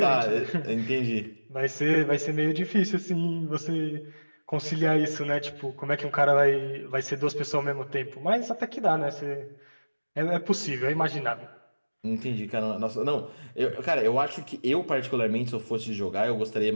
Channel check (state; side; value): inverted; both; correlation -1.00